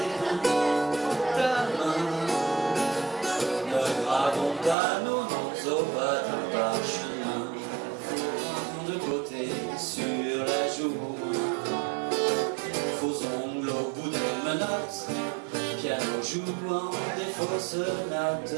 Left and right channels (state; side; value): drops out; left; at 4.8 s